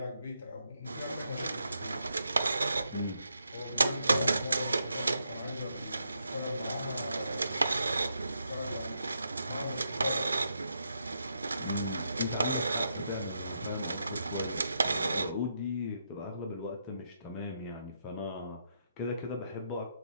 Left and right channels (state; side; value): inverted; both; correlation -0.80